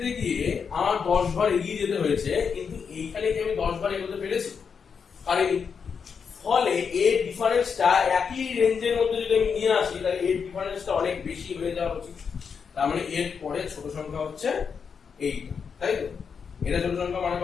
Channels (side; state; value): right; quieter; 6.2 dB